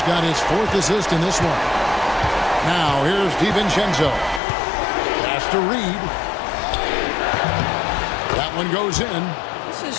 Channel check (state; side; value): drops out; right; at 4.4 s